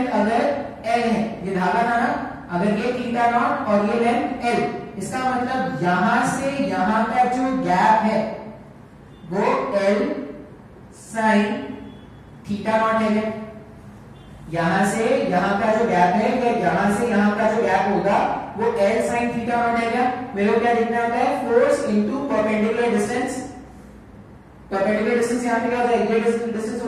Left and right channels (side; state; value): both; identical; correlation 1.00